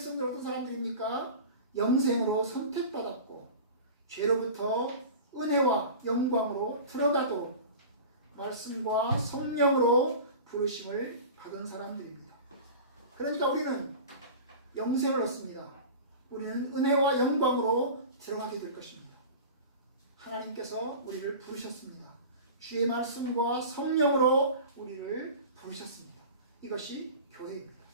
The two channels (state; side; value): inverted; both; correlation -0.35